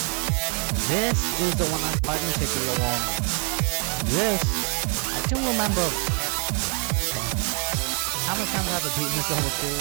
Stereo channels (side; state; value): left; quieter; 38.9 dB